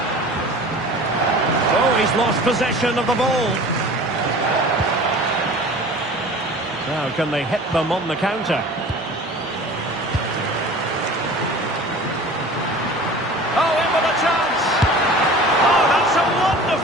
Oh, he's lost possession of the ball. Now, can they hit them on the counter? Oh, in with a chance! Oh, that's a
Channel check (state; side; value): normal; both; correlation 0.41